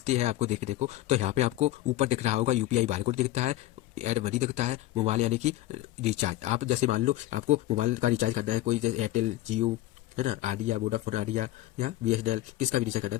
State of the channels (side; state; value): right; quieter; 15.5 dB